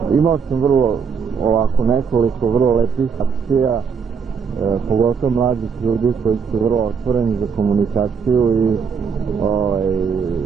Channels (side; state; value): left; quieter; 6.2 dB